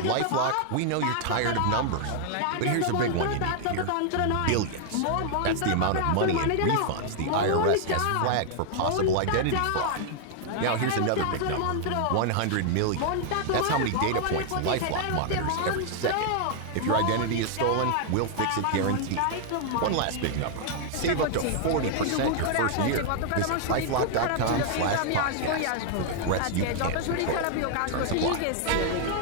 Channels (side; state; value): both; different; correlation 0.00